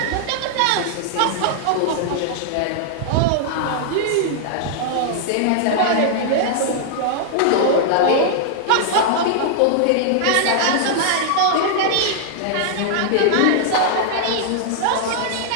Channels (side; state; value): both; different; correlation -0.01